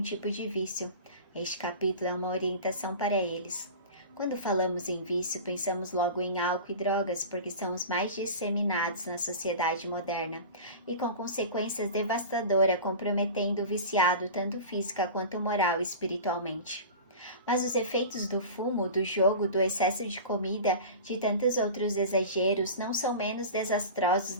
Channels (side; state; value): both; inverted; correlation -0.33